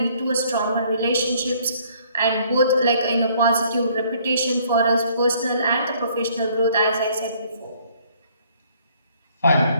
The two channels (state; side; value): inverted; both; correlation -0.62